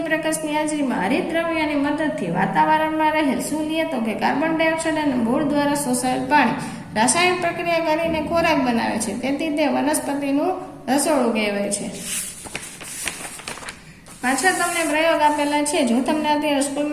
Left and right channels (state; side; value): identical; both; correlation 1.00